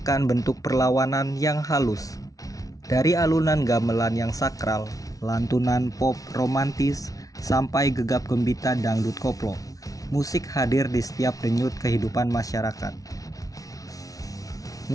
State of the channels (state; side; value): late; right; 0.18 ms